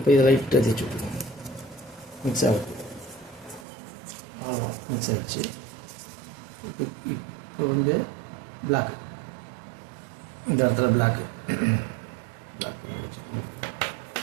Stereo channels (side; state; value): left; drops out; at 3.7 s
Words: இதை லைட்டாக தேய்ச்சி விட்டுருவோம். மிக்ஸ் ஆகுது, அவ்வளோதான், மிக்ஸ் ஆகிடுச்சு. இப்போ வந்து பிளாக்கு, இந்த இடத்துல பிளாக்கு வச்சு